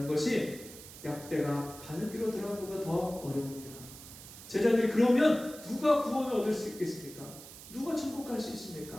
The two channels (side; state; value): right; noise; hiss, 15 dB below the sound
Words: 것이 약대가 바늘귀로 들어가는 것보다 더 어려움이라. 제자들이 그러면 누가 구원을 얻을 수 있겠습니까? 누가 천국 갈 수